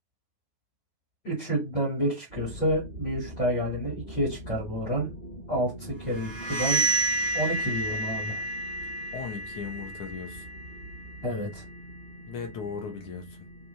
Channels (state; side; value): late; right; 9.4 ms